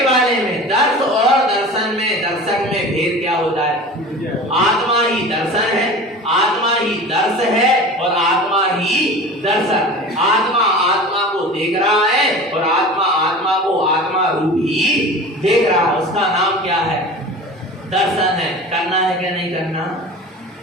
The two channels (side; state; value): both; normal; correlation 0.36